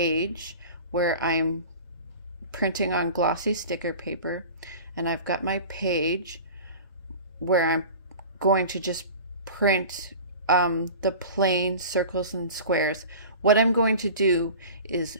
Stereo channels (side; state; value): both; inverted; correlation -0.37